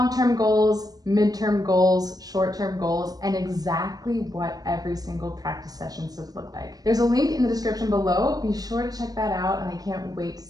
goals, midterm goals, short-term goals, and exactly what every single practice session should look like. There's a link in the description below. Be sure to check that out, and I can't wait to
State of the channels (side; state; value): left; late; 0.18 ms